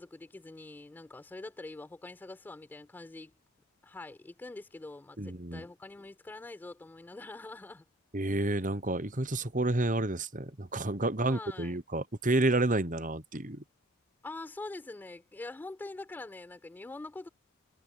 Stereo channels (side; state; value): both; normal; correlation 0.54